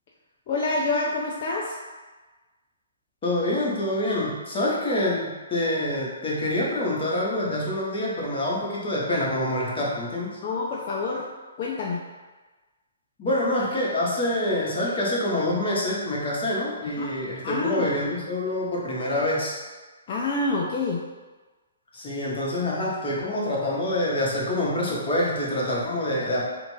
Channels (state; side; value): inverted; both; correlation -0.31